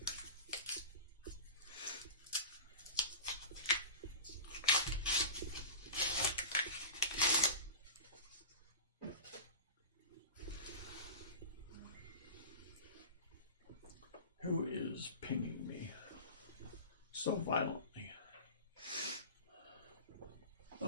Who is pinging me so violently?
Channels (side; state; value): both; inverted; correlation -0.31